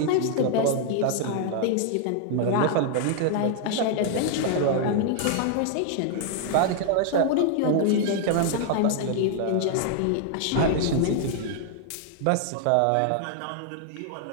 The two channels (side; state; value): both; different; correlation 0.00